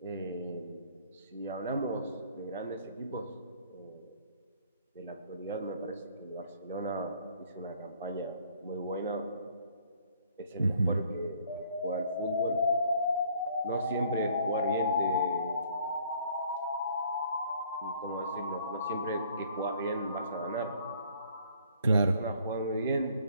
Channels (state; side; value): inverted; both; correlation -0.59